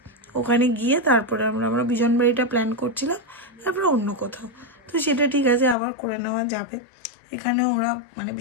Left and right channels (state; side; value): drops out; right; at 5.8 s